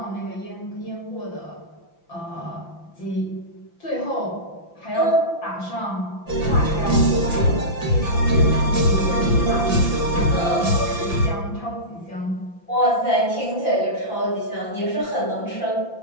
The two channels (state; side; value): late; right; 5.9 ms